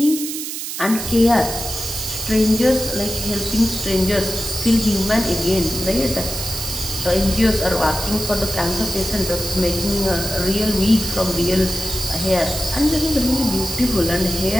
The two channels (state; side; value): noise; right; hiss, 6 dB below the sound